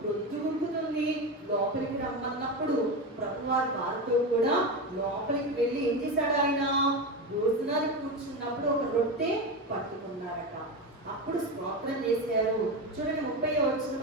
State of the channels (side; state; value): both; normal; correlation 0.19